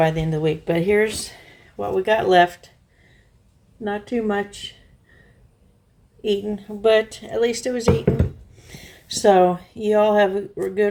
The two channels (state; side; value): identical; both; correlation 1.00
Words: the end of the week. But here's what we got left. Not too much eaten, but at least it was eaten. So you all have a